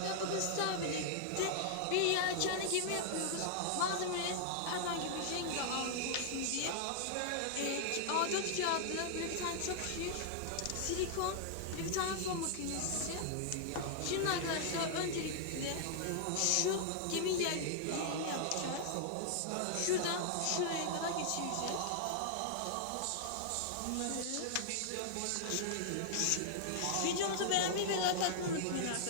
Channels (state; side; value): different; both; correlation -0.01